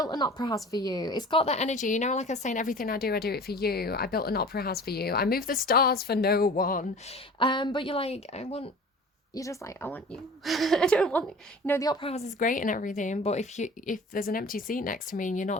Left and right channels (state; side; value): normal; both; correlation 0.42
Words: an opera house for you. It's got that energy, you know, like I was saying, everything I do it for you. I built an opera house for you. I moved the stars for no one. But you're like, you're just like, I want you. I don't want, you know, the opera house is great and everything, but if there's an empty seat next to me and you're